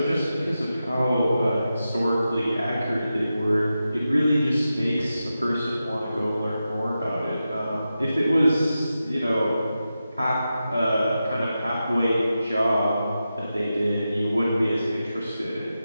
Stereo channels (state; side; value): inverted; both; correlation -0.91